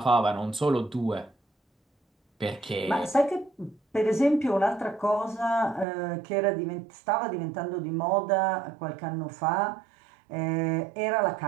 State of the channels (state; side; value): drops out; left; at 5.9 s